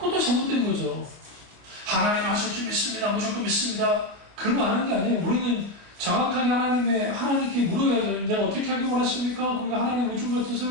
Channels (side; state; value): left; late; 26 ms